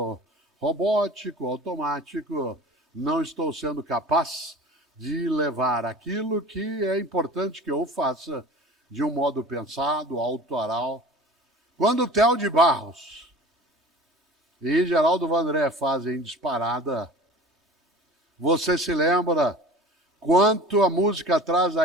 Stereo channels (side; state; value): both; normal; correlation 0.41